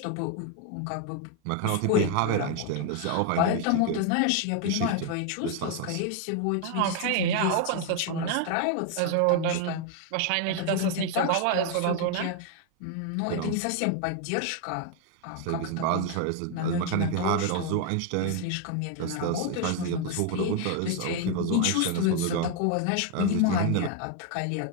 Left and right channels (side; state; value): both; different; correlation 0.00